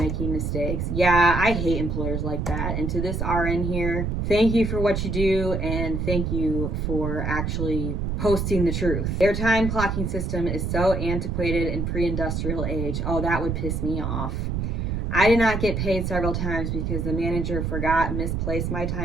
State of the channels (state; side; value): noise; right; rumble, 1 dB below the sound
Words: mistakes. Yeah, I hate employers like that. And to this RN here, thank you for what you do, and thank you for actually posting the truth. Their time clocking system is so antiquated and pre-industrial age. Oh, that would piss me off. I did not get paid several times because the manager forgot and misplaced my